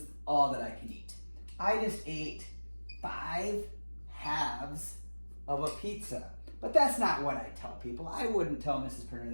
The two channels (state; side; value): inverted; both; correlation -1.00